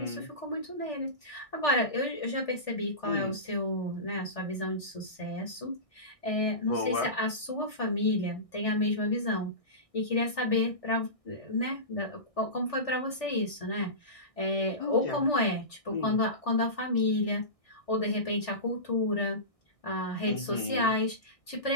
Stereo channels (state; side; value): late; right; 1.6 ms